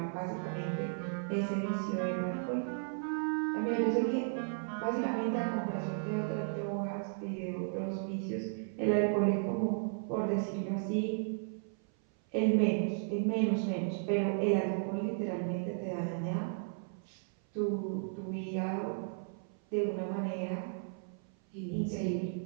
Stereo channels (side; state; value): left; silent; 55 dB below the other